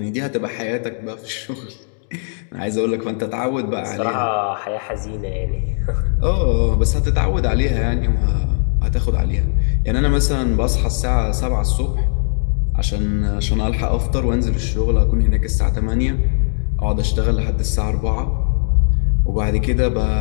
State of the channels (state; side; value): silent; right; digital silence